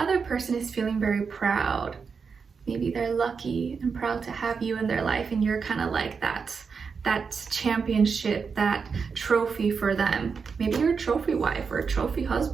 person is feeling very proud. Maybe they're lucky and proud to have you in their life, and you're kind of like that championship, that trophy for them. Maybe you're a trophy wife or a trophy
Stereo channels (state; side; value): quieter; left; 5.6 dB